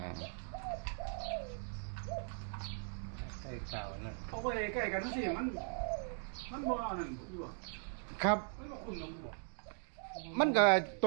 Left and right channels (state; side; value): silent; left; 52 dB below the other